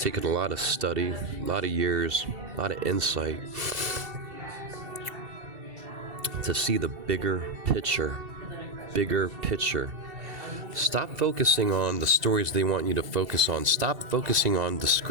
a lot of study, a lot of years, a lot of insight to see the bigger picture. Stop focusing on the stories they want you to focus on. Stop focusing on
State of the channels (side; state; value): left; late; 2.7 ms